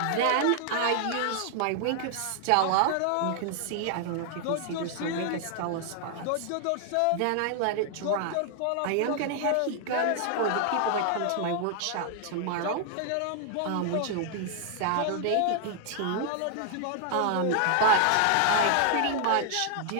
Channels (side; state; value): both; different; correlation 0.00